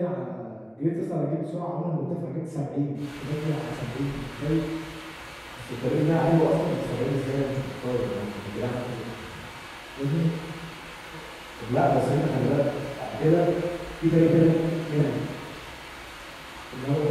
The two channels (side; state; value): both; identical; correlation 1.00